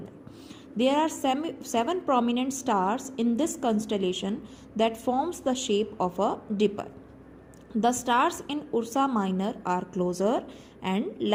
There are seven prominent stars in this constellation that forms the shape of a dipper. The stars in Ursa Minor are closer and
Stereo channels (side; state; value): both; identical; correlation 1.00